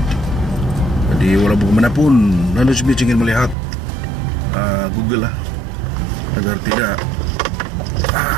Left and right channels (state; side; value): drops out; left; at 3.6 s